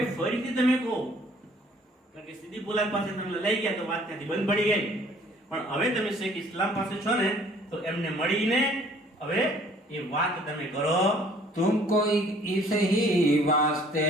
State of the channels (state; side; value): normal; both; correlation 0.57